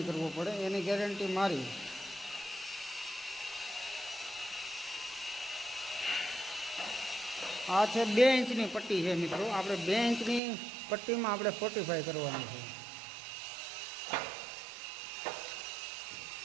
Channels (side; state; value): left; drops out; at 10.4 s